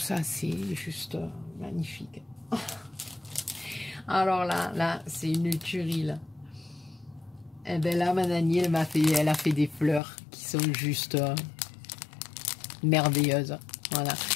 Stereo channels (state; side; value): drops out; right; at 10.0 s